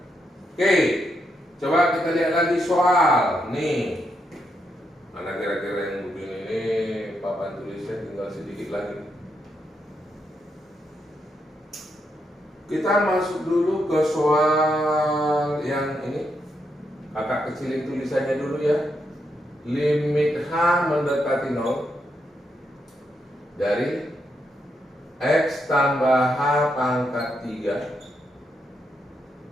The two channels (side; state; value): both; normal; correlation 0.81